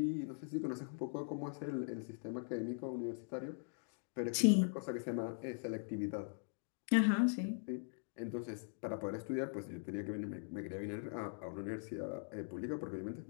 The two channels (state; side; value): silent; right; digital silence